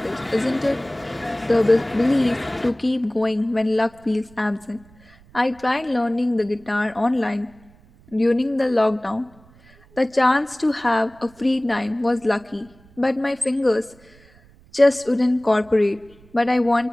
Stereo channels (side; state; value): right; noise; rumble, 27 dB below the sound